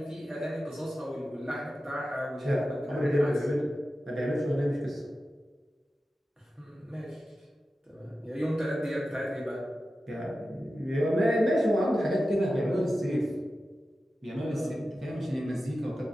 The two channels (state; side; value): normal; both; correlation 0.93